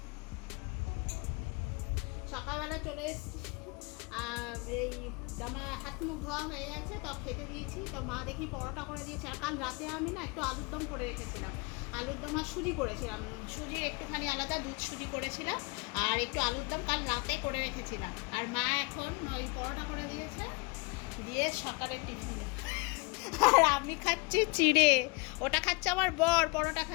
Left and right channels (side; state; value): right; quieter; 29.4 dB